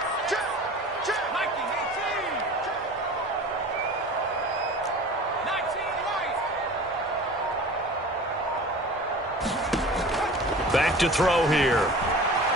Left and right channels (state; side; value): normal; both; correlation 0.39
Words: Back to throw here.